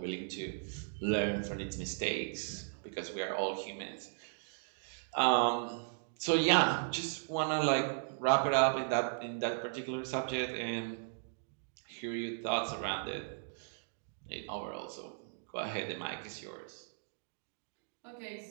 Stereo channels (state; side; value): silent; left; digital silence